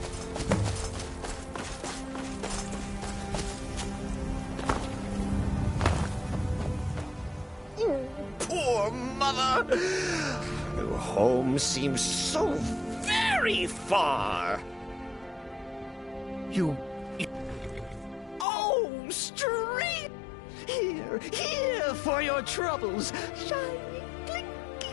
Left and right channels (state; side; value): drops out; right; at 18.4 s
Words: Poor mother. Her home seems so very far. You... Oh, straight! Here for your troubles. Shiny,